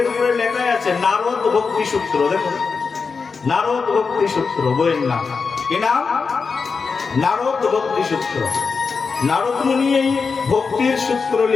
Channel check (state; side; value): quieter; right; 5.0 dB